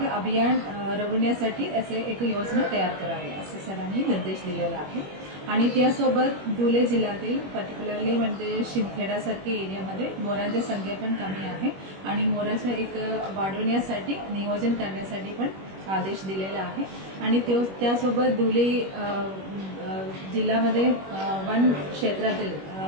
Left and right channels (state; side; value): late; left; 21 ms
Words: अभियान राबवण्यासाठी असे एक योजना तयार करावी असे सरांनी निर्देश दिलेला आहे. आणि त्यासोबत धुळे जिल्ह्यातील पर्टिक्युलरली म्हणजे शिंदखेडासारख्या एरियामध्ये मोरांची संख्या पण कमी आहे आणि मोराचं एक वाढवण्यासाठी नियोजन करण्यासाठी पण आदेश दिलेला आहे. आणि त्यासोबत धुळे जिल्ह्यामध्ये वन